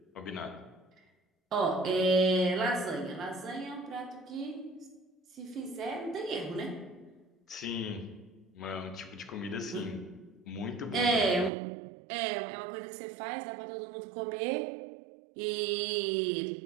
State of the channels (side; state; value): left; drops out; at 11.5 s